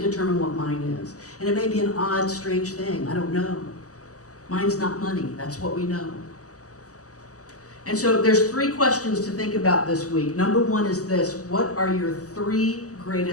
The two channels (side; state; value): right; late; 0.66 ms